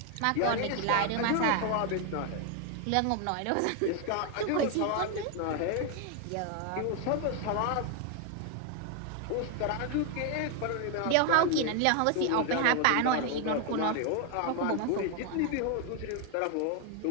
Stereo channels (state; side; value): different; both; correlation 0.01